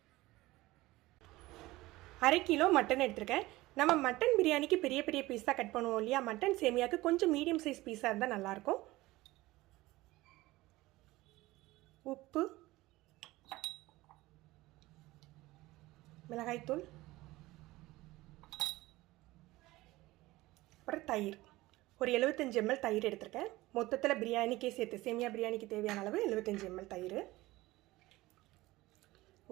1/2 கிலோ மட்டன் எடுத்துர்க்கேன். நம்ம மட்டன் பிரியாணிக்கு பெரிய பெரிய பீஸா கட் பண்ணுவோம் இல்லையா? மட்டன் சேமியாக்கு கொஞ்சம் மீடியம் சைஸ் பீஸா இருந்தா நல்லா இருக்கும். உப்பு, மிளகாய் தூள், அப்புறம் தயிர். ஒரு 75 ml தயிர் எடுத்துர்க்கேன். மொத்தத்தில் பிரியாணிக்கே சேர்த்து சேமியா பிரியாணிக்கு தேவையான அளவு 75 ml தயிர்.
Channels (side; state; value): left; quieter; 18.9 dB